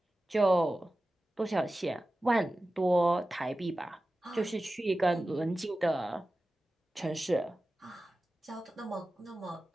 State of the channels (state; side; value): normal; both; correlation 0.95